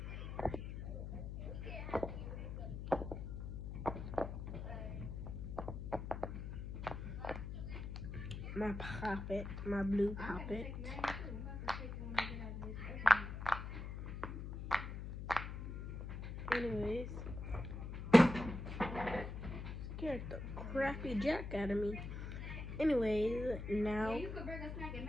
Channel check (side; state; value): left; noise; hum, 6 dB below the sound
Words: my poppet, my blue poppet. Anyways, scared the crappy jack out of me. Anyways, now. Yeah, you could bring a snack and